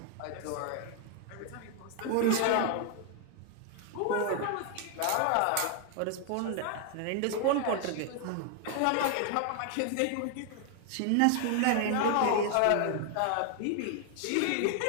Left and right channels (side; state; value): both; different; correlation 0.00